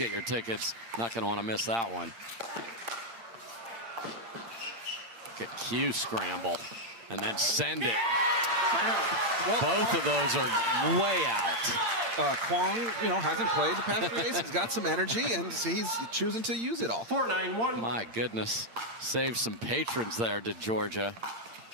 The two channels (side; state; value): left; late; 8.7 ms